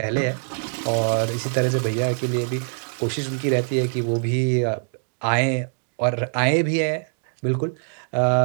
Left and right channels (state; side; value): silent; left; digital silence